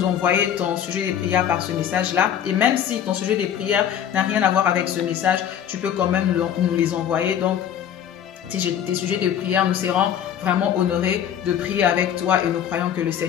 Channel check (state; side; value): quieter; right; 9.5 dB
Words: envoyer ton sujet de prière par ce message-là. Et même si ton sujet de prière n'a rien à voir avec ce message, tu peux quand même nous les envoyer. Donc, tes sujets de prière, nous serons vraiment honorés de prier avec toi et nous croyons que le